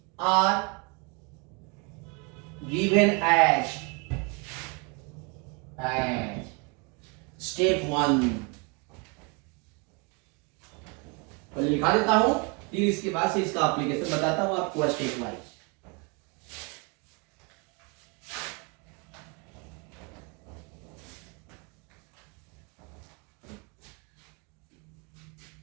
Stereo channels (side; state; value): left; quieter; 30.3 dB